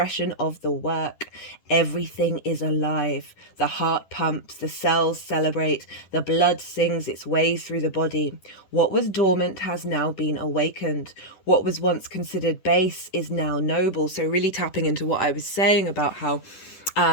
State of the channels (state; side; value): late; right; 10 ms